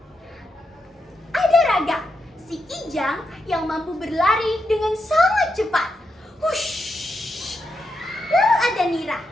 Ada Raga, si kijang yang mampu berlari dengan sangat cepat. Hush. Lalu ada Nira,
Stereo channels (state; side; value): normal; both; correlation 0.84